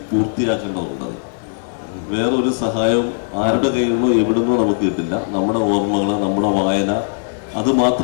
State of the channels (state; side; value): silent; right; 59 dB below the other